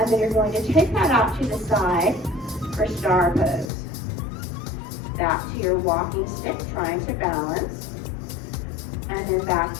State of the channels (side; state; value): right; drops out; at 3.7 s